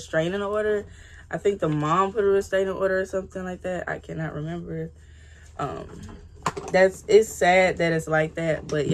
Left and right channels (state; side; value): identical; both; correlation 1.00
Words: order. I think the mom put a restraining order or something like that. I cannot remember. It's sad that it's like that, but